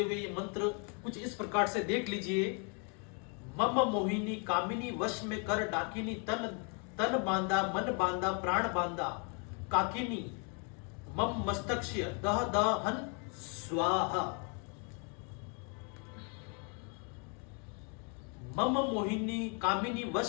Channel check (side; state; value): right; quieter; 37.4 dB